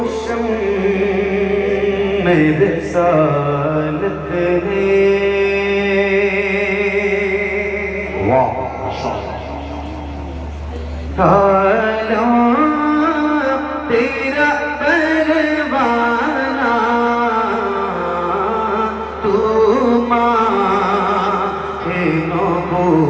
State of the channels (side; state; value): both; identical; correlation 1.00